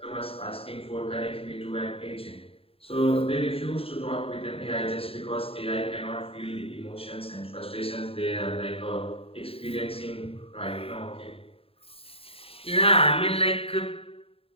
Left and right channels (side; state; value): right; late; 0.27 ms